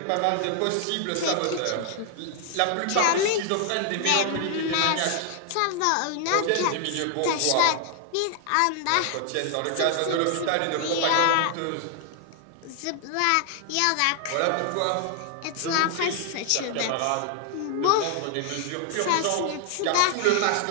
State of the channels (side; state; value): both; different; correlation 0.00